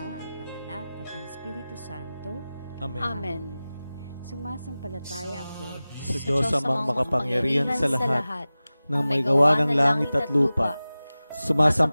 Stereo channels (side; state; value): both; inverted; correlation -0.97